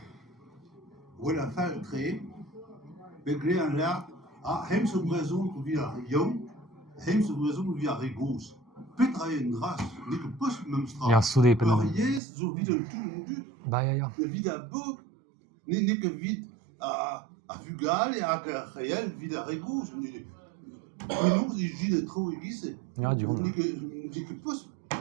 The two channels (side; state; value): left; drops out; at 12.2 s